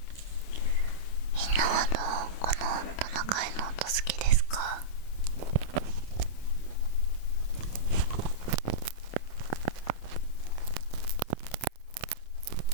みんなはこのトナカイの音好きですか？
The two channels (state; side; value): late; right; 27 ms